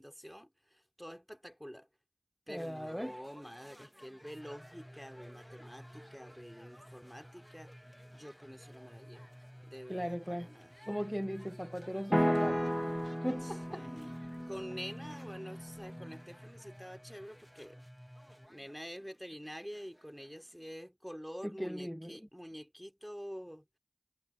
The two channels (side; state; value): both; identical; correlation 1.00